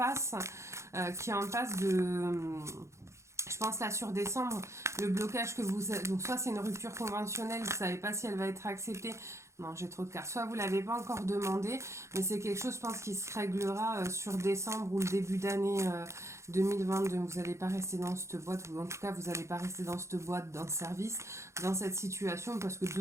de... Je pense là sur décembre, le blocage que vous... Donc soit c'est une rupture conventionnelle, vous ne savez pas si elle va être acceptée. Non, j'ai trop de cartes. Soit vous ne l'avez pas encore demandé, mais c'est quelque chose, je pense, qui se réglera sur décembre ou le début d'année 2022. Vous n'allez pas rester dans cette boîte, ou en tout cas, vous n'allez pas rester dans cette boîte, dans ce service, dans cette situation, parce que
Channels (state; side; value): late; left; 0.14 ms